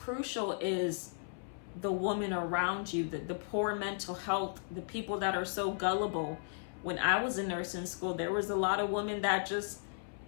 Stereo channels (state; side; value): silent; right; 54 dB below the other